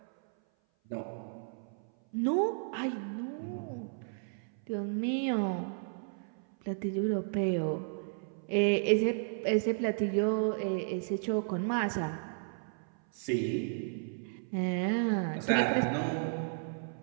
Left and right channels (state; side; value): silent; left; 56 dB below the other